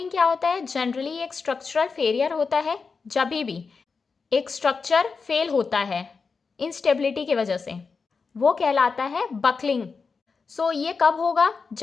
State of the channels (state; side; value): quieter; right; 4.9 dB